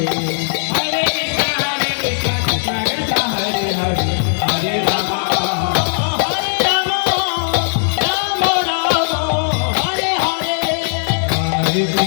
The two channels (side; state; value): right; silent; 57 dB below the other